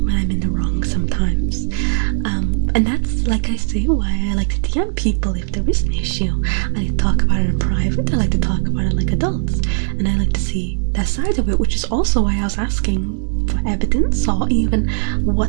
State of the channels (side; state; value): left; silent; digital silence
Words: I'm in the wrong sometimes, and that's, like I say, why I like to DM people if there is an issue. I like to talk about it in private, I like to talk about it like adults, and I like to see their side of it, which is also why I was asking for evidence, or even